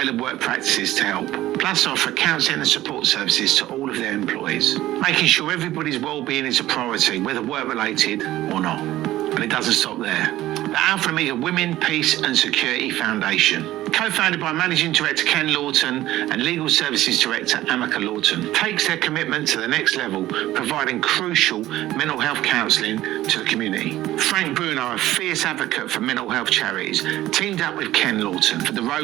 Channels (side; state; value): left; quieter; 15.2 dB